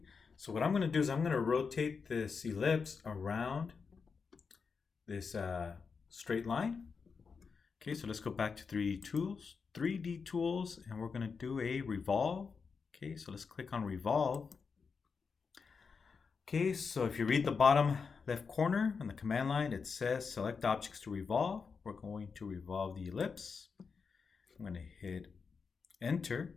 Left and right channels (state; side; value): quieter; right; 5.4 dB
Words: So what I'm going to do is I'm going to rotate this ellipse around this straight line. Okay, so let's go back to 3D Tools, and we're going to do a revolve. Okay, so let's click on revolve. Okay, so if you read the bottom left corner on the command line, it says select objects to revolve. We're going to revolve the ellipse. I'm going to hit enter.